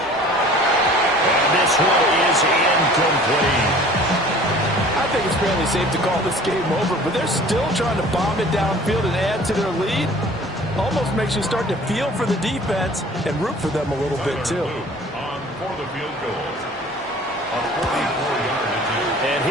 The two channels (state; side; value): normal; both; correlation 0.47